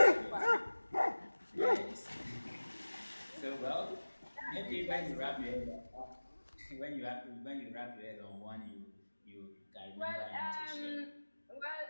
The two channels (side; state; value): both; inverted; correlation -1.00